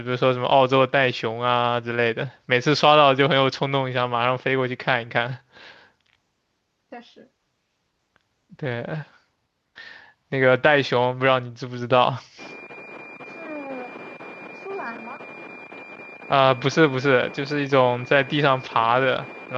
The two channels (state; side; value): identical; both; correlation 1.00